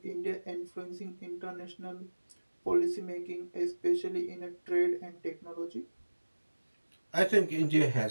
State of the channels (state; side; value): inverted; both; correlation -1.00